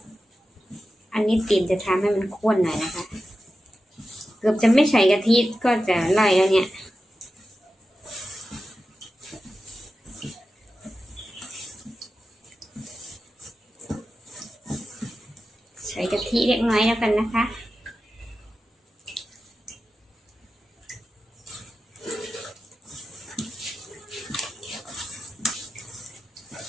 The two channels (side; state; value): both; normal; correlation 0.93